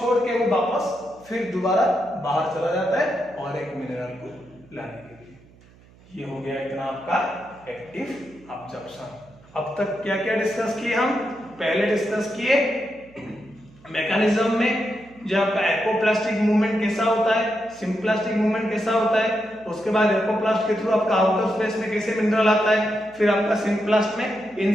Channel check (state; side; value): noise; right; hum, 26 dB below the sound